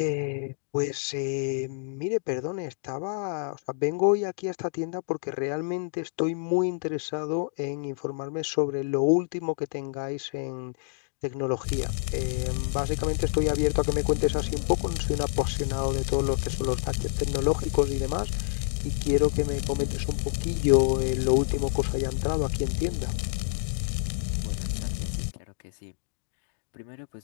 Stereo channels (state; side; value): silent; right; digital silence